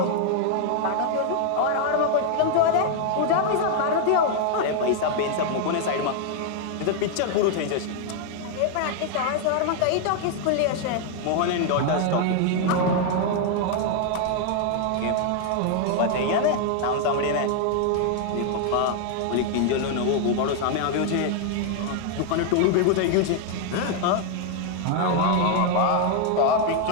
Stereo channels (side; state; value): both; different; correlation 0.00